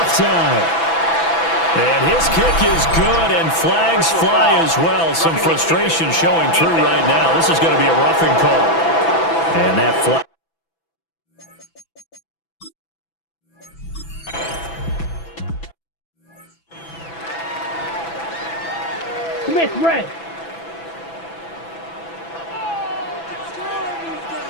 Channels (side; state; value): right; late; 6.0 ms